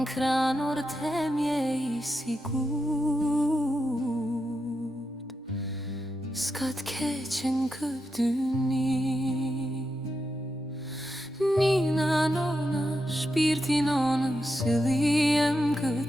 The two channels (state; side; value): normal; both; correlation 0.86